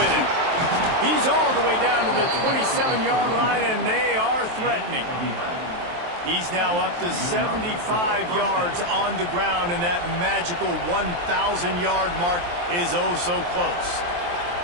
him. He's all the way down to the 27-yard line, and they are threatening. He's now up to 75 yards on the ground, and that magical 1,000-yard mark is oh so close.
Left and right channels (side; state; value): left; late; 23 ms